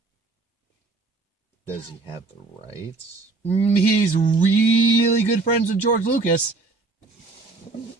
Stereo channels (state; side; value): quieter; left; 3.7 dB